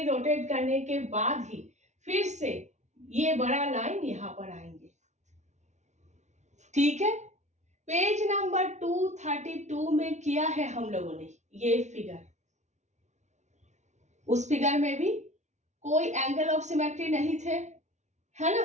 रोटेट करने के बाद ही फिर से ये बड़ा लाइन यहां पर आएंगे। ठीक है, पेज नंबर 232 में किया है हम लोगों ने ये फिगर। उस फिगर में भी कोई एंगल ऑफ सिमेट्री नहीं थे, है ना,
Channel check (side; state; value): left; late; 0.33 ms